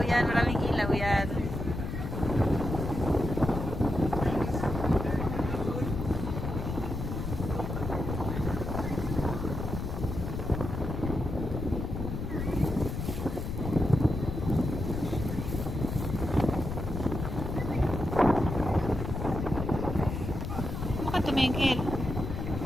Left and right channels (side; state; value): left; noise; rumble, 4 dB below the sound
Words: yan. Maraming ilaw yan. Tumingkil.